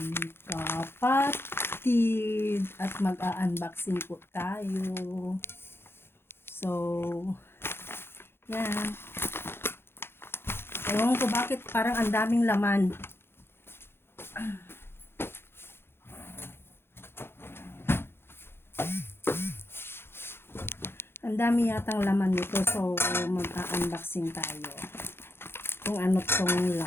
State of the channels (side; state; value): right; late; 0.11 ms